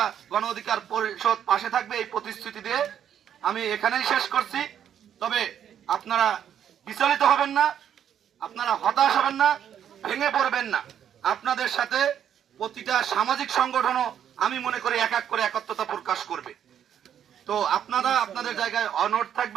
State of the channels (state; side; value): quieter; left; 9.4 dB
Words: গণ অধিকার পরিষদ পাশে থাকবে এই প্রতিশ্রুতি দিয়ে আমি এখানেই শেষ করছি। তবে আপনারা বিচলিত হবেন না, আপনারা হতাশ হবেন না, ভেঙে পড়বেন না। আপনাদের সাথে প্রতিটা সামাজিক সংগঠনও আমি মনে করি এক এক করে একত্রতা প্রকাশ করবে। তো আপনারা আপনাদের জায়গায় অনড়